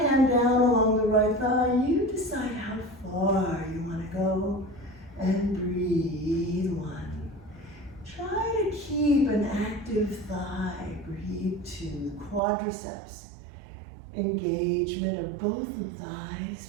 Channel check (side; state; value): left; drops out; at 12.4 s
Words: hand down along the right thigh. You decide how far you want to go. And breathe one. Try to keep an active thigh. Breathe two. Quadriceps. Engagement of both the